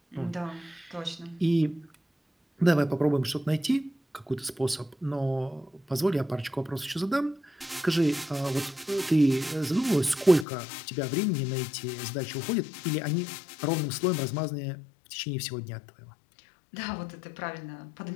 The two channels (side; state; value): right; drops out; at 10.5 s